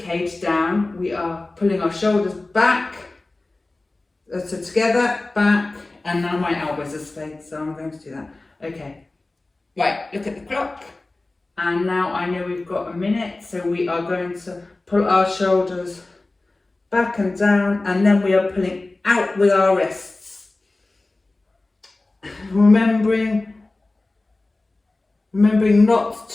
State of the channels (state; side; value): quieter; right; 3.1 dB